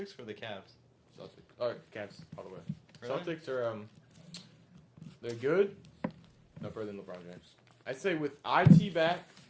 or the Cavs. Celtics. Alright, Cavs, all the way. Really? Celtics are, they're good. No better than LeBron James. I'd say with IT back,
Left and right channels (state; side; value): identical; both; correlation 1.00